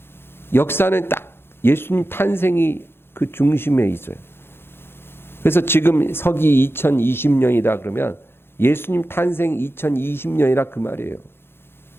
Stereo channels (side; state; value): right; late; 0.11 ms